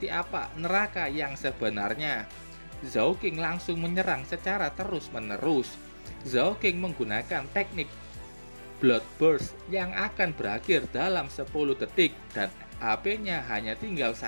apa neraka yang sebenarnya. Zhao King langsung menyerang secara terus-menerus. Zhao King menggunakan teknik Blood Burst yang akan berakhir dalam 10 detik dan HP-nya hanya tinggal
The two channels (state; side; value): inverted; both; correlation -1.00